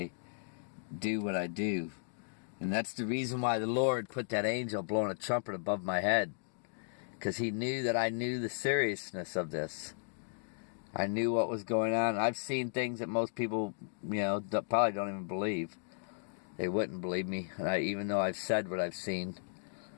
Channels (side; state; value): right; silent; digital silence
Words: do what I do. And that's the reason why the Lord put that angel blowing a trumpet above my head. Because he knew that I knew the seriousness of this. I knew what was going on. I've seen things that most people, probably don't even believe. They wouldn't believe me, even though I've said what I've seen.